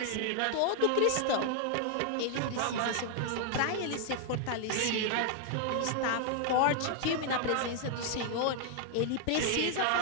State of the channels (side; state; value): both; different; correlation 0.00